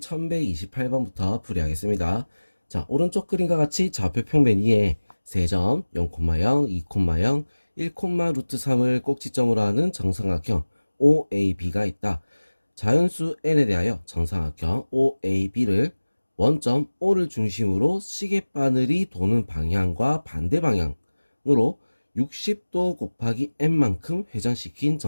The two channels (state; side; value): inverted; both; correlation -1.00